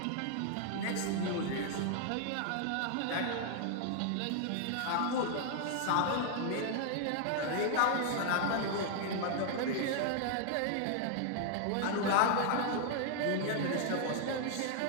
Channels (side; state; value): both; different; correlation 0.00